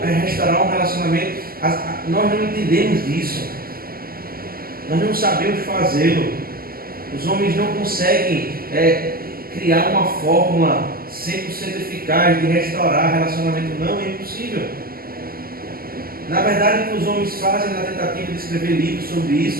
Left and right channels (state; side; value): late; left; 0.43 ms